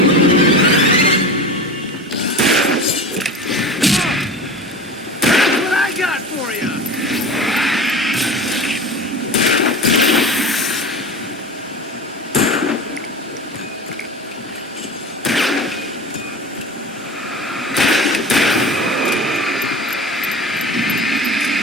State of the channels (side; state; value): both; normal; correlation 0.32